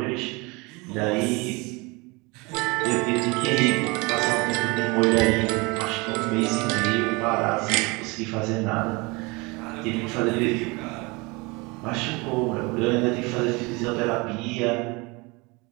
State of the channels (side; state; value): left; quieter; 26.3 dB